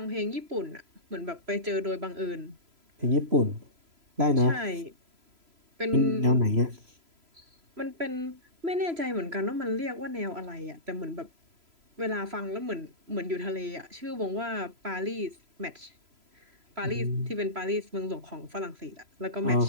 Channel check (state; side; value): late; left; 3.0 ms